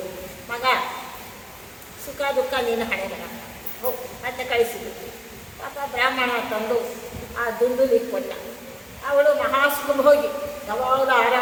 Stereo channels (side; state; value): both; identical; correlation 1.00